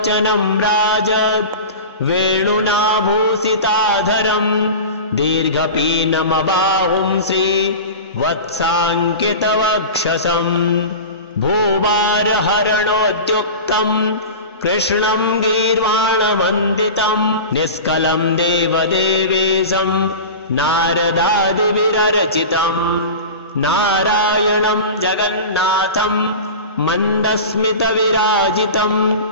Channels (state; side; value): inverted; both; correlation -0.31